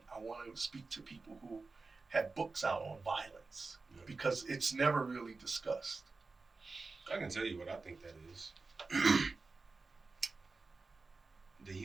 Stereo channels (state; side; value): quieter; left; 3.9 dB